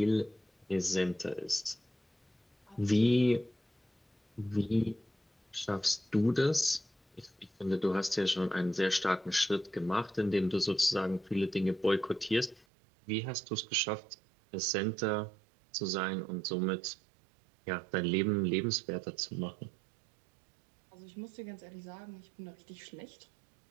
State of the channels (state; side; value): drops out; left; at 12.7 s